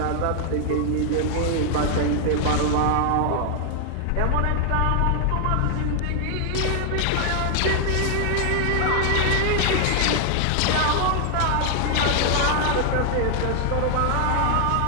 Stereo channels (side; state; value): both; different; correlation 0.00